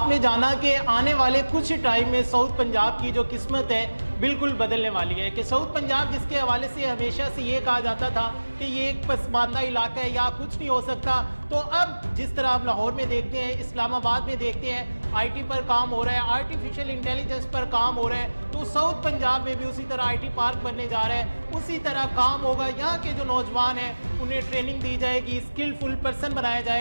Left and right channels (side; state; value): both; inverted; correlation -1.00